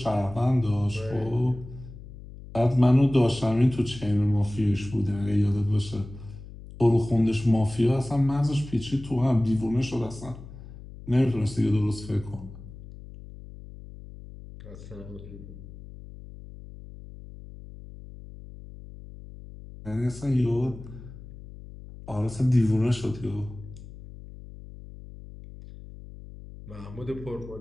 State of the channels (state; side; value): noise; left; hum, 16 dB below the sound